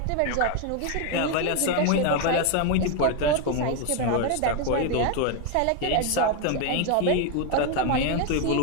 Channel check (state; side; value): different; both; correlation 0.01